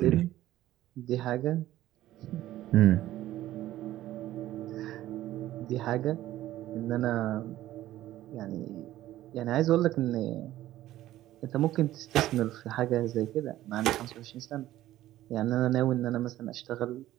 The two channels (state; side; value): quieter; left; 14.4 dB